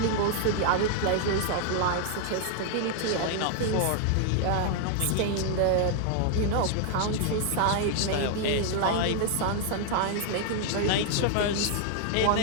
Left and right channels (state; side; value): different; both; correlation 0.00